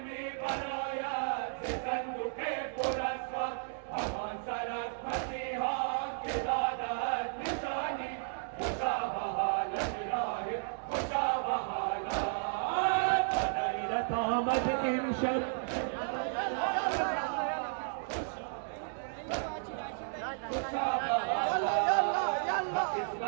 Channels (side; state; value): left; silent; digital silence